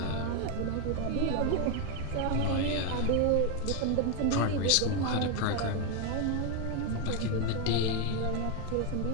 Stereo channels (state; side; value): different; both; correlation 0.01